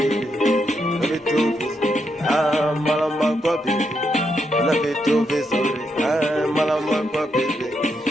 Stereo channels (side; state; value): both; normal; correlation 0.81